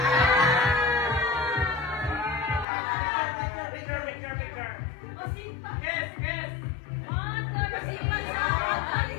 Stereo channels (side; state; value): right; drops out; at 2.7 s